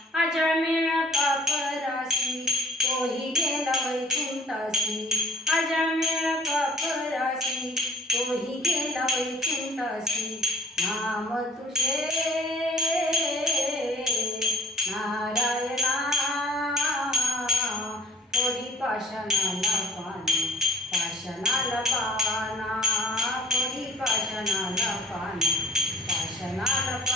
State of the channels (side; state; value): both; normal; correlation 0.54